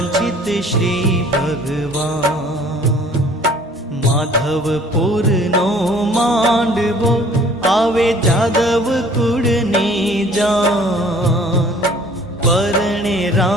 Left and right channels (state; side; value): normal; both; correlation 0.53